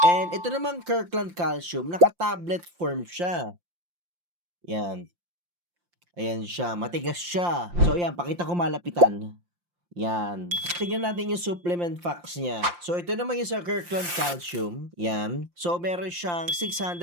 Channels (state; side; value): late; left; 5.7 ms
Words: And ito namang Kirkland calcium, naka-tablet form siya. Yan. Ayan siya. Matigas siya. So, yan. Pakita ko malapitan. Yan. Tingnan natin yung supplement facts niya. So, ito naman yung sa Kirkland Calcium. Yan. So, meron siyang